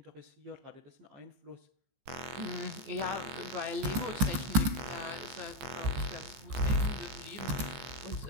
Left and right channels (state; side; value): late; left; 15 ms